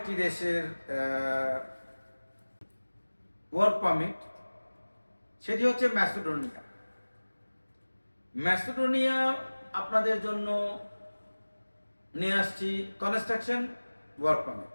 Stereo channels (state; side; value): inverted; both; correlation -1.00